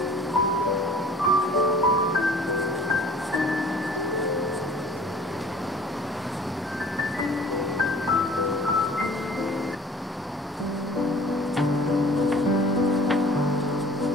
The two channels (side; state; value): both; normal; correlation 0.48